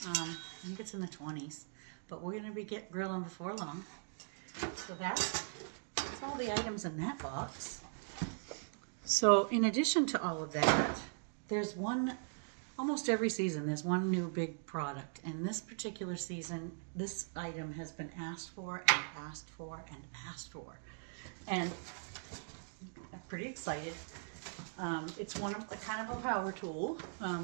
I think it's in the 20s, but we're going to be grilling before long. So that's all the items in that box. So in addition to all of that, there's almost every season, there's one new big product. And this particular season, this item has been asked for and asked for and asked for. And I'm pretty excited. It's kind of a power tool.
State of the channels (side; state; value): left; silent; digital silence